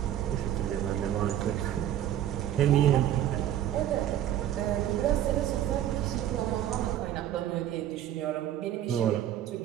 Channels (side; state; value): left; quieter; 11.6 dB